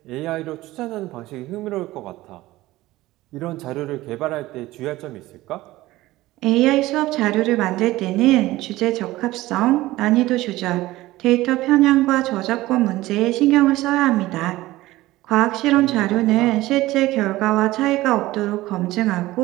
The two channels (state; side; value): quieter; left; 17.5 dB